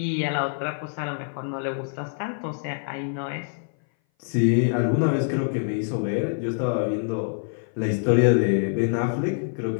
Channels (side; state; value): right; silent; 58 dB below the other